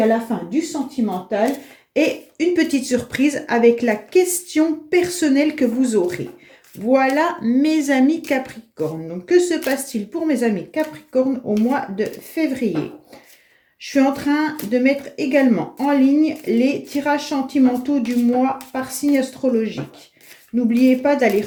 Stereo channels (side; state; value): both; identical; correlation 1.00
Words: à la fin, du sentimental et une petite surprise avec la question personnelle que vous aurez. Voilà, mes amis Capricorne. Donc, que se passe-t-il pour mes amis Capricorne au mois de février ? Je suis en train de mettre également en ligne les tirages sentimentaux du mois par signe astrologique. N'oubliez pas d'aller